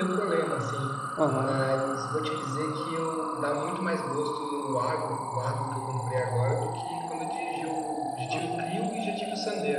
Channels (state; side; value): identical; both; correlation 1.00